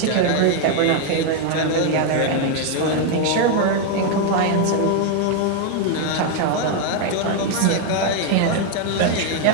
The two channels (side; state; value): both; different; correlation 0.01